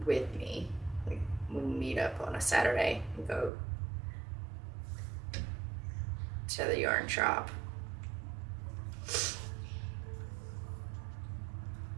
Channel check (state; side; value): drops out; left; at 3.5 s